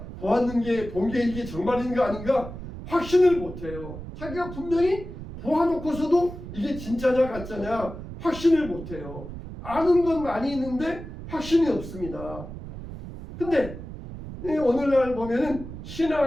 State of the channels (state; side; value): noise; right; rumble, 11 dB below the sound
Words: 본 게 이게 정말인가 아닌가 확신을 못해요. 자기가 분명히 보아놓고서도 이게 진짜냐 가짜냐 확신을 못해요. 아는 건 많이 있는데 확신이 없습니다. 근데 오늘날 보면은